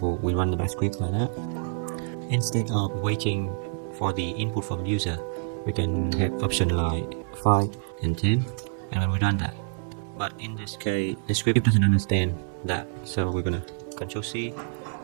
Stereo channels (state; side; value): silent; left; 60 dB below the other